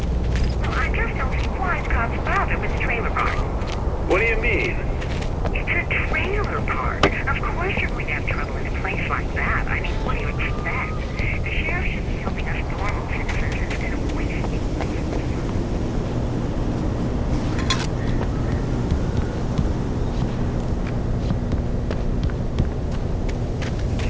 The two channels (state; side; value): identical; both; correlation 1.00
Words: What do you mean? It's a trailer park. Of course you're going to have trouble in a place like that. I mean, what do you expect? The sheriff should be helping us normal citizens instead of wasting.